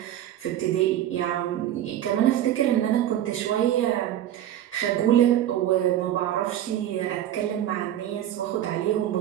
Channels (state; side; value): quieter; left; 11.9 dB